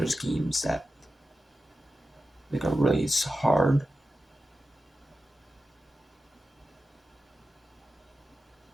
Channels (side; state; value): both; normal; correlation 0.92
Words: games that like are really hard.